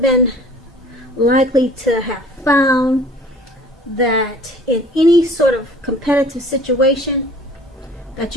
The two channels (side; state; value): both; normal; correlation 0.49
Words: been likely to have found that in any sort of competitive situation that